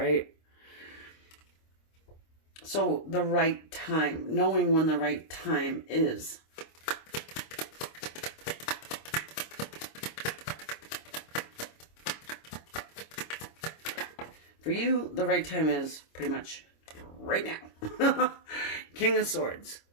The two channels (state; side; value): late; right; 26 ms